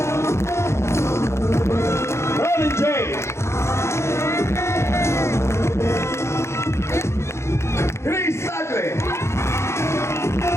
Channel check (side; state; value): right; late; 0.13 ms